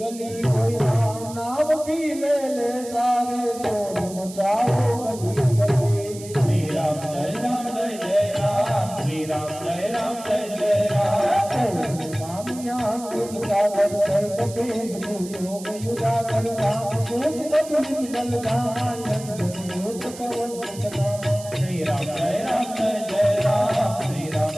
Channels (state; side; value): noise; right; hiss, 15 dB below the sound